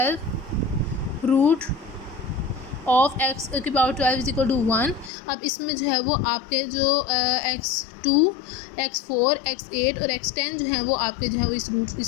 root of x की पावर 12 इज इक्वल टू 1। अब इसमें जो है वो आपके जो x2, x4, x8 और x10 जो है वो आपके जो है वो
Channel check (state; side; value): drops out; right; at 5.1 s